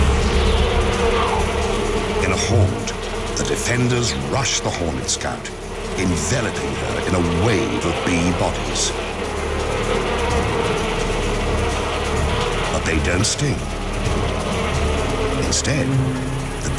In a horde, the defenders rush the hornet scout, enveloping her in a wave of bee bodies. But they don't sting. Instead, the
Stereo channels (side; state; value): both; identical; correlation 1.00